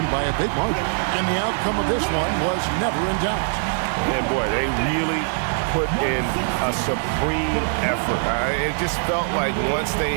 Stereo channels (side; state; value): left; silent; 62 dB below the other